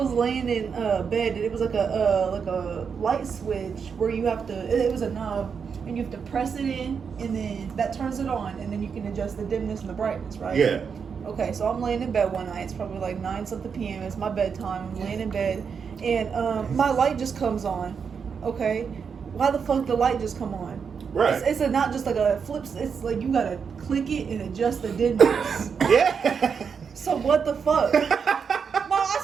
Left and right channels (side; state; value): left; quieter; 6.3 dB